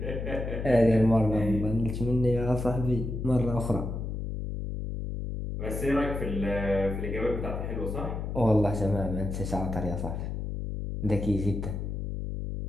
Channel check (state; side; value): noise; left; hum, 4 dB below the sound